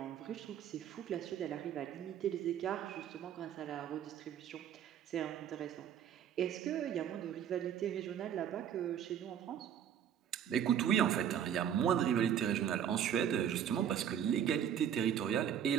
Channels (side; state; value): left; quieter; 9.3 dB